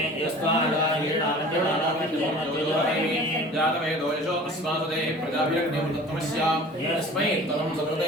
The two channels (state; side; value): normal; both; correlation 0.43